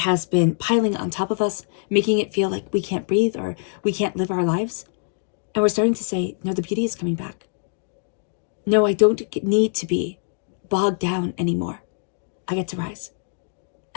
been piling on top of us, making it feel like we can't breathe or we can't live our lives. And we're starting to say, no, the beauty is coming back. No, I don't need to be bogged down anymore. I get to rise.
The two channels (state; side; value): silent; right; 63 dB below the other